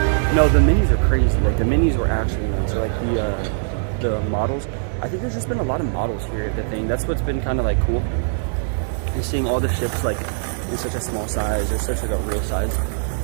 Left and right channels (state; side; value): silent; left; digital silence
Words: No, the minis are crazy. Like the minis were actually nice. Like the models. I think there's just been a lot of models here at the thing. That's what's been kind of like cool. You're seeing all the ships like in such a small size or such like a real size.